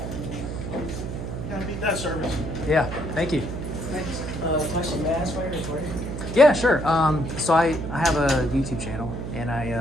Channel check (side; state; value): right; noise; hum, 6 dB below the sound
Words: Gotta beat that service. Yeah, thank you. Question, may I ask why you're recording? Yeah, sure. So I have a YouTube channel, and